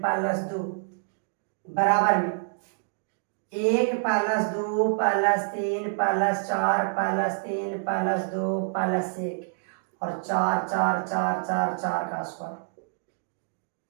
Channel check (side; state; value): left; silent; digital silence